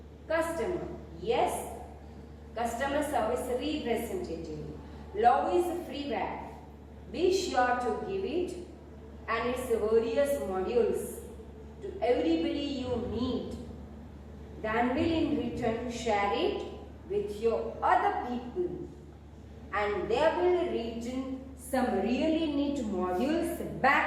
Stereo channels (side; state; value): both; identical; correlation 1.00